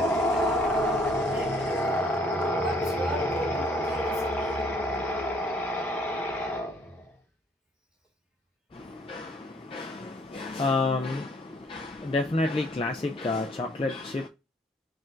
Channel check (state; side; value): normal; both; correlation 0.62